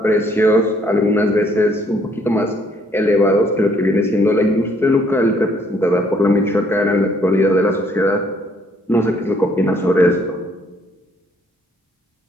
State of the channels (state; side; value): normal; both; correlation 0.65